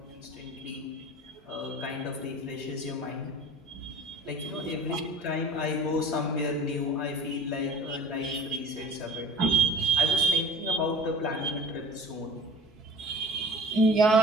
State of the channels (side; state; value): both; normal; correlation 0.43